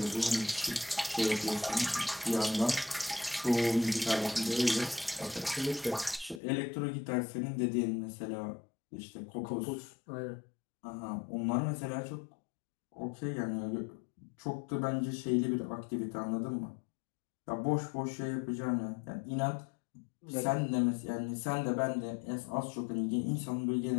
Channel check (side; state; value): right; drops out; at 6.4 s